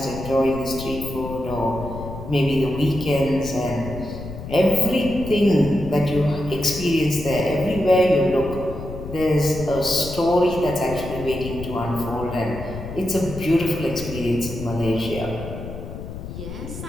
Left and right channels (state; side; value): noise; left; rumble, 10 dB below the sound